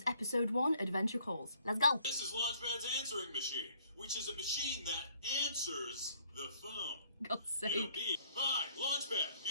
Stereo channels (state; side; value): inverted; both; correlation -0.62